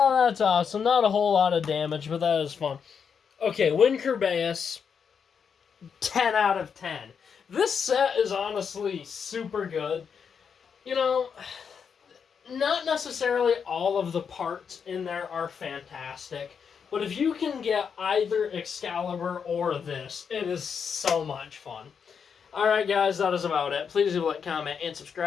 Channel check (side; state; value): right; quieter; 6.7 dB